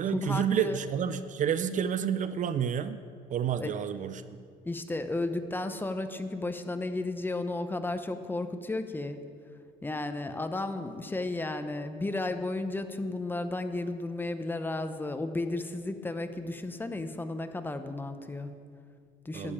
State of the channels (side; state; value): both; normal; correlation 0.65